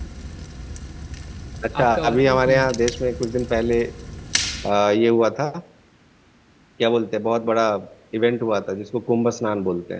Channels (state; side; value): identical; both; correlation 1.00